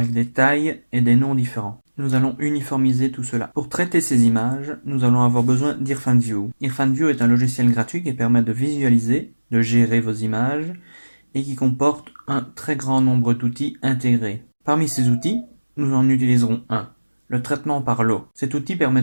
des tailles et des noms différents. Nous allons uniformiser tout cela. Pour traiter ces images, nous allons avoir besoin d'IrfanView. IrfanView est un logiciel gratuit qui permet de visualiser, de gérer vos images et qui comporte un très grand nombre d'outils intégrés. Parmi ces outils, nous en utiliserons un, le traitement par lot. Cet outil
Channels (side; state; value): both; inverted; correlation -1.00